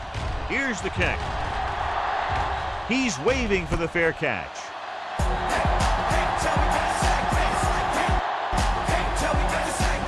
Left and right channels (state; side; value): identical; both; correlation 1.00